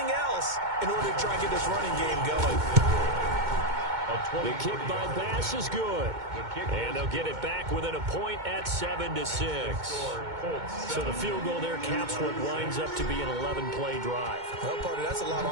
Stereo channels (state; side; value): late; left; 2.2 ms